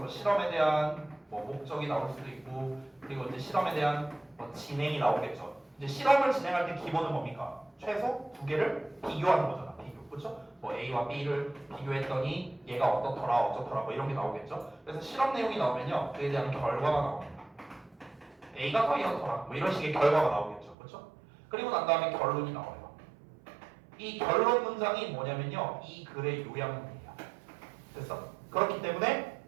실험에 대한 뭐 목적이 나올 수도 있고, 그리고 이제 실험에 대한 뭐 진행이 나오겠죠. 이제 실험을 진행할 때 기본은 뭡니까? 최소 두 개를 비교하는 거잖아. 비교, 그렇죠? 뭐 A와 B를 비교했더니 얘가 어떻더라, 어쩌더라, 뭐 이런 게 나오겠죠. 그래서 실험 내용이 나오면요, 그에 대한 결과가 나옵니다. A가 더 이렇더라, 뭐 이런 식의 결과가 나오겠죠, 그렇죠? 그리고 난 다음에 결론이 나와요. 이 결론 문장이 뭐냐면요, 이 글의 요약문이에요. 됐어? 그렇기 때문에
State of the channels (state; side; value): drops out; left; at 20.8 s